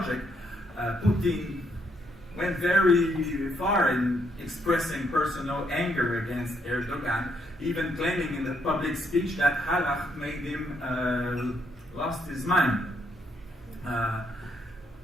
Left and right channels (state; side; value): normal; both; correlation 0.74